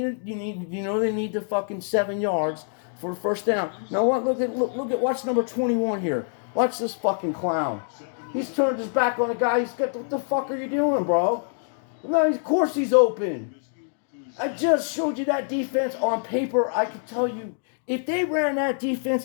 the fucking 7 yards for a first down. Now watch number 21 here. Watch this fucking clown. He's turned his back on the guy. He's got, what the fuck are you doing, bro? No, of course he's open. I just showed you that defense on paper. I can tell you, if they ran that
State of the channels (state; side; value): silent; right; digital silence